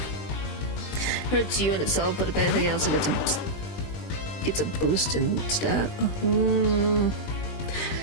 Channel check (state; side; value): late; right; 20 ms